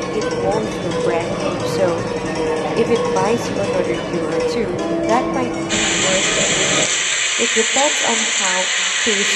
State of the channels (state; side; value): identical; both; correlation 1.00